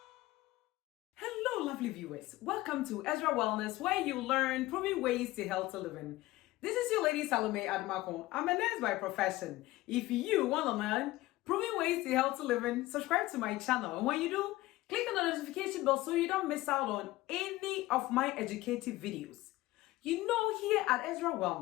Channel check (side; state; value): right; quieter; 18.0 dB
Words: Hello, lovely viewers. Welcome to Ezra Wellness, where you learn proven ways to healthy living. This is your lady Salome Admako. I'm a nurse by profession. If you want to learn proven ways to healthy living, subscribe to my channel. And when you do, click on the notification bell so you don't miss out on any of my educative videos. You know, here at Ezra